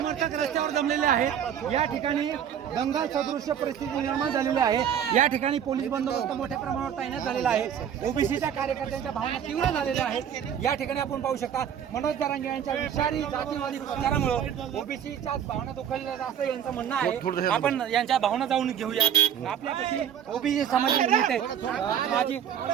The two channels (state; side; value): quieter; left; 9.0 dB